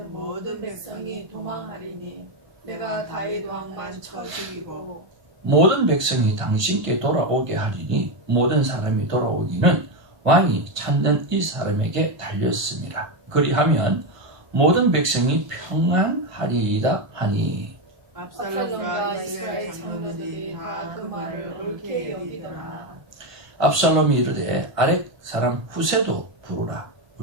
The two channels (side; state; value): left; late; 1.5 ms